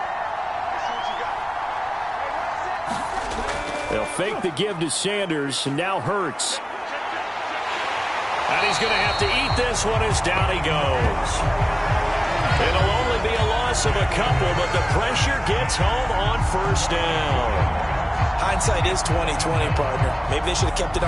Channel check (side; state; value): both; identical; correlation 1.00